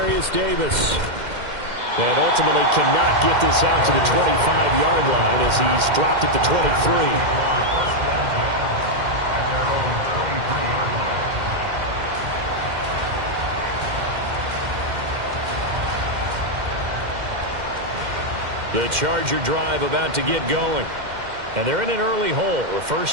Davis. And ultimately cannot get this out to the 25-yard line as he's dropped at the 23. The Charger drive about to get going. And they're in an early hole. The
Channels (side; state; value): left; late; 2.1 ms